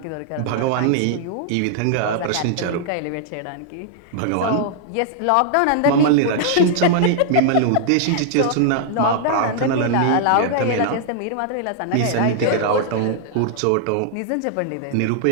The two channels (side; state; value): both; different; correlation -0.01